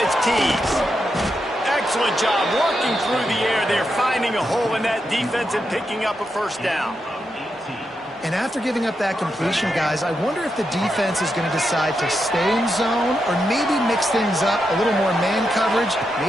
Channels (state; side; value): normal; both; correlation 0.85